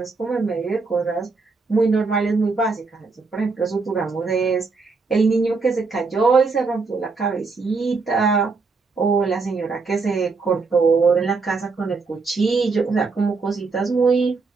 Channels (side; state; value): left; quieter; 4.3 dB